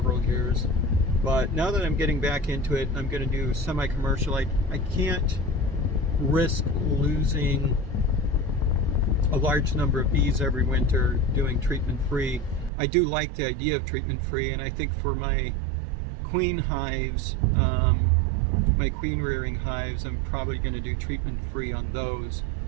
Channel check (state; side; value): drops out; left; at 12.7 s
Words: years. But now that I'm getting back into it, I'm going to do semi-commercial. I can't risk losing a large number of bees every winter doing treatment free. I do like the idea of treatment free, and I think for my queen hives, my queen rearing hives, I'm probably going to do treatment free on those.